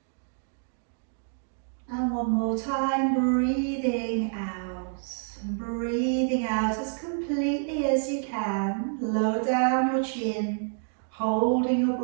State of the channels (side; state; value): left; silent; digital silence